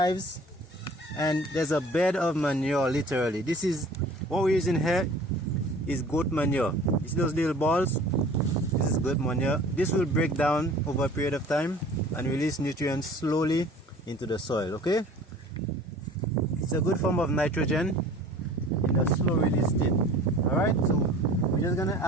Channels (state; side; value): normal; both; correlation 0.46